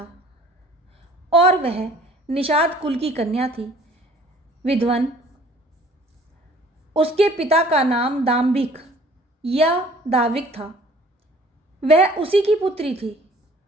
और वह निषाद कुल की कन्या थी। विद्वन। उसके पिता का नाम दाम्भिक या दाविक था। वह उसी की पुत्री थी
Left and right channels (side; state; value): both; normal; correlation 0.53